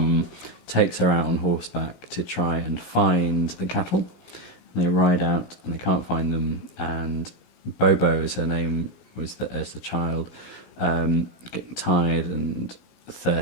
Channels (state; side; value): late; right; 17 ms